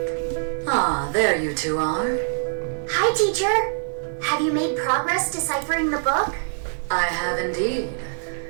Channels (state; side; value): silent; left; digital silence